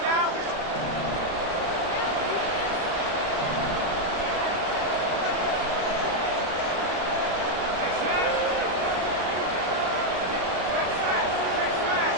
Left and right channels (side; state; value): left; late; 30 ms